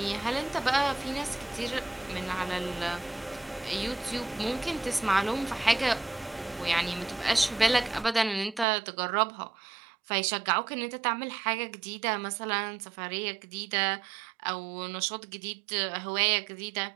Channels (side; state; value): left; drops out; at 8.7 s